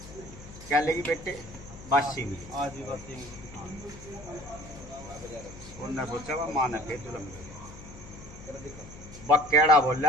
क्या लेगी बेटे बासी मिली आज भी बात नहीं उन्होंने सोचा वह माँ ने फिर जुलम बकेड़ा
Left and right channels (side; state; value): left; noise; hum, 16 dB below the sound